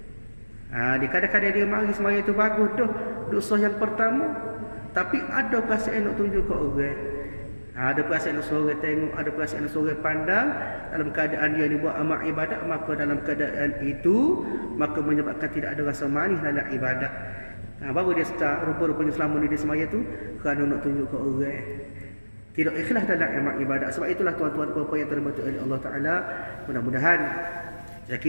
Di kadang-kadang dia mari semaya itu bagus tu, dosa yang pertama, tapi ada perasaan nak tunjuk ke orang. Ada perasaan nak suruh tengok, ada perasaan nak suruh pandang. Dalam keadaan dia ni buat amal ibadat, maka dalam keadaan itu maka menyebabkan tidak ada rasa manis dalam ibadat. Baru dia start rupa-rupanya selama ni dia semaya tu kerana nak tunjuk ke orang. Tidak ikhlas dalam amal ibadat. Sebab itulah tuan-tuan dan puan-puan yang terhormat oleh Allah Taala, mudah-mudahan saya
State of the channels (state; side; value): inverted; both; correlation -1.00